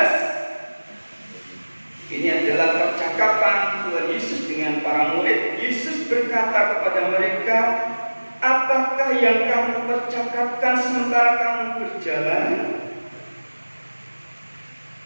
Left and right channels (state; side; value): inverted; both; correlation -1.00